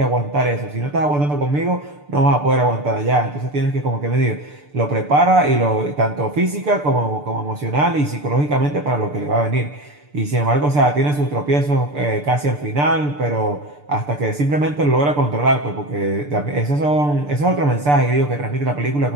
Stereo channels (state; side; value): late; left; 6.8 ms